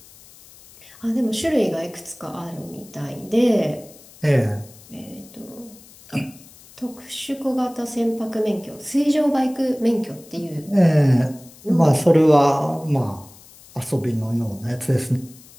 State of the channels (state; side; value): noise; left; hiss, 23 dB below the sound